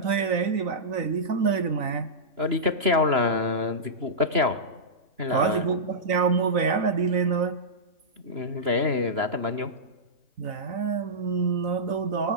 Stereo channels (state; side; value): late; left; 2.9 ms